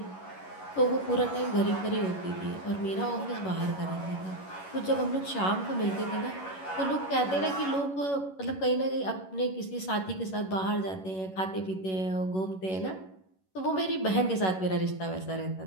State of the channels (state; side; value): late; right; 11 ms